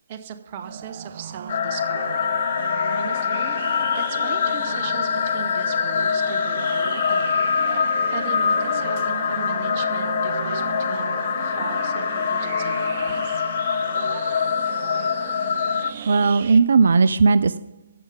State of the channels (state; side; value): inverted; both; correlation -0.76